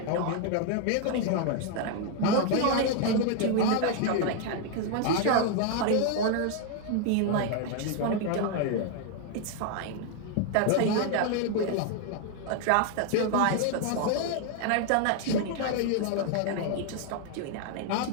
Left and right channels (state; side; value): different; both; correlation 0.00